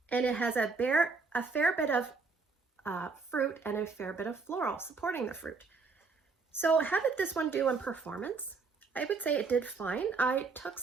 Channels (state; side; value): quieter; left; 4.4 dB